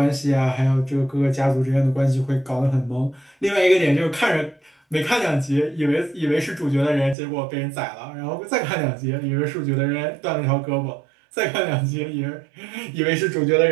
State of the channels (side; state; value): left; drops out; at 7.2 s